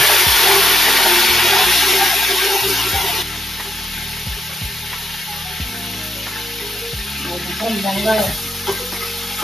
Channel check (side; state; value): both; normal; correlation 0.79